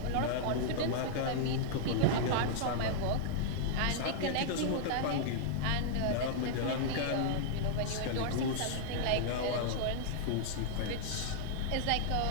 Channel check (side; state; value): both; different; correlation -0.01